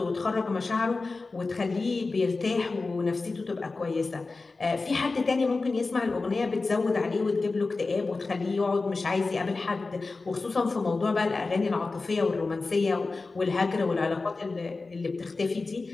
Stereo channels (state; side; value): quieter; right; 3.8 dB